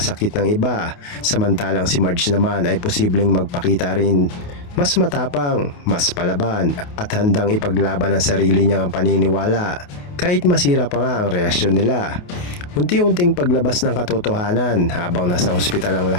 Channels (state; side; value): late; right; 28 ms